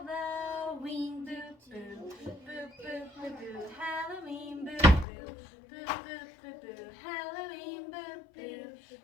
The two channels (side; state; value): right; drops out; at 5.1 s